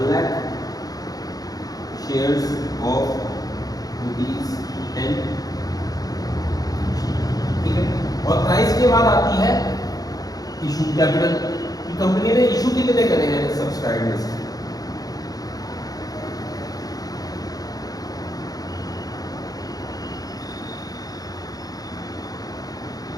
shares of ₹10, ठीक है। और प्राइस के बाद आती है इशू कैपिटल कि कंपनी ने इशू कितने करे हैं सब्सक्राइब लिस्ट।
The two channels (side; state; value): right; late; 0.18 ms